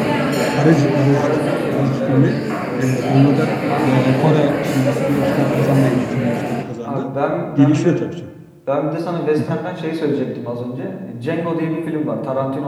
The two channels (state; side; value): identical; both; correlation 1.00